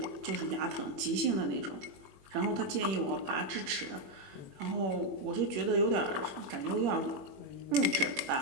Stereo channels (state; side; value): late; left; 21 ms